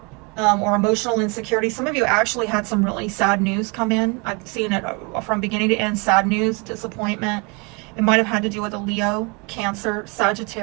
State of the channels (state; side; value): quieter; left; 30.5 dB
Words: or emotional insecurity. Some of you actually had some really sad news come in. I've seen it from beginning to end, sad news, disappointment. It might have had to do with a Leo, Cancer,